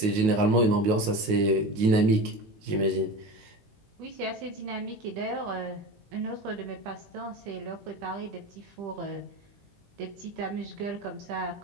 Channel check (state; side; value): late; left; 18 ms